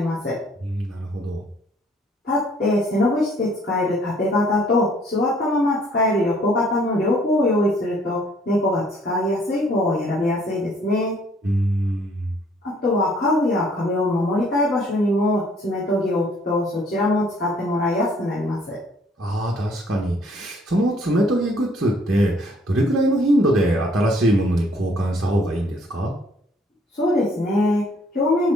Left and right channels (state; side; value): normal; both; correlation 0.61